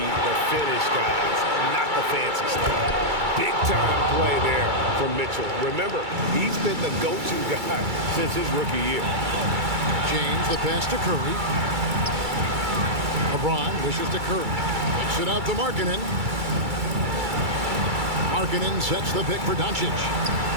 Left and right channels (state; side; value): late; left; 2.3 ms